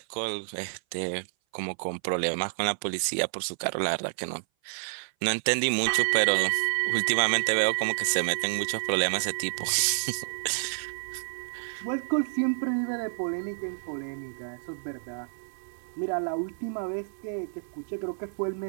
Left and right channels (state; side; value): silent; left; 57 dB below the other